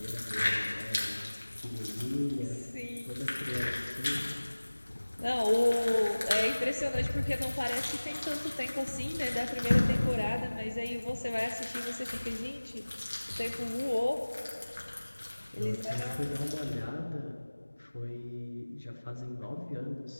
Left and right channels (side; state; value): both; inverted; correlation -1.00